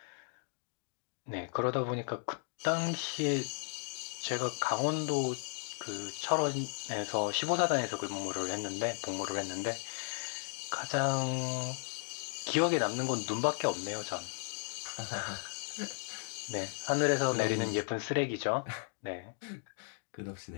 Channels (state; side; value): silent; right; 54 dB below the other